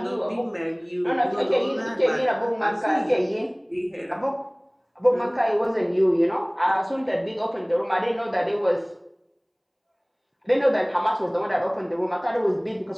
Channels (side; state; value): both; identical; correlation 1.00